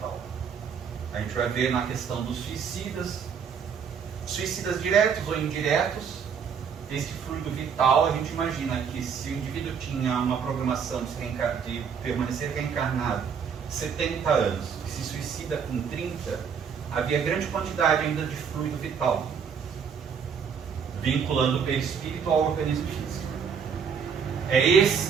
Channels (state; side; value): quieter; left; 6.8 dB